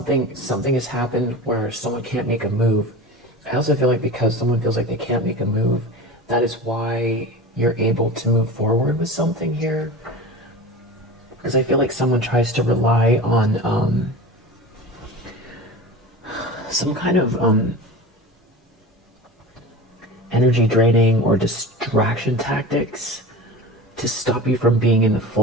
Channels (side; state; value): both; normal; correlation 0.32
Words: has happened where someone can't make a move. I also feel like because someone feels like they can't make a move, that is why you're able to move forward with something here. Because I feel like someone tries to rely on some kind of energy draining or distraction tactics to stop you from being in the